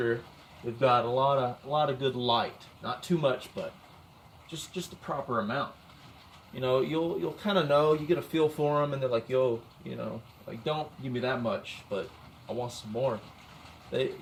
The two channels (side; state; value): both; identical; correlation 1.00